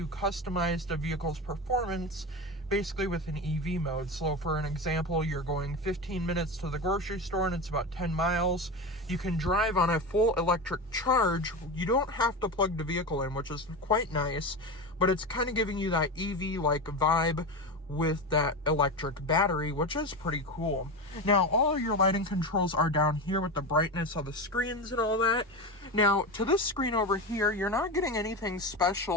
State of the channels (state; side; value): normal; both; correlation 0.22